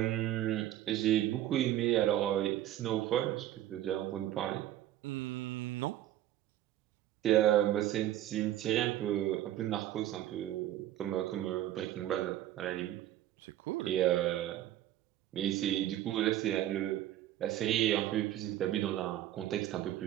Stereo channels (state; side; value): quieter; left; 13.0 dB